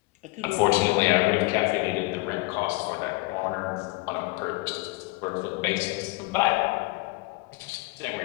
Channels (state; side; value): quieter; right; 23.6 dB